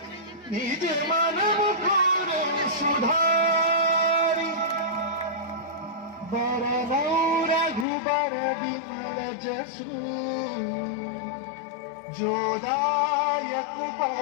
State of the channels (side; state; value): right; drops out; at 7.9 s